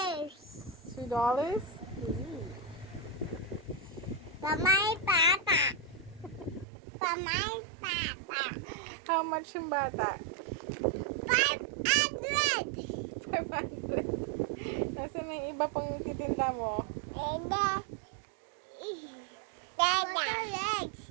$2? Pamay pata. Pamay pata. How much yung bata? 500. 500. Nasaan na yung iba pang titinda mo? Dada. Legs.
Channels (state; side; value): drops out; left; at 6.7 s